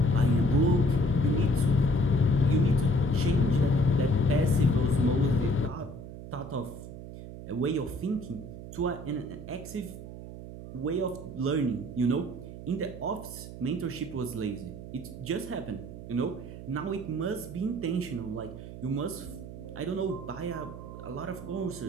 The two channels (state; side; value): noise; right; hum, 12 dB below the sound